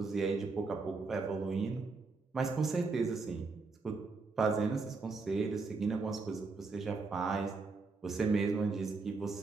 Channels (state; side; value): quieter; left; 4.1 dB